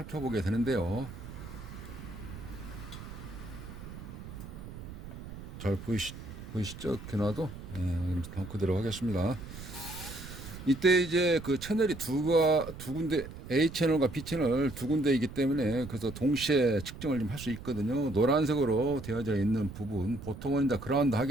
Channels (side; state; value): right; noise; rumble, 12 dB below the sound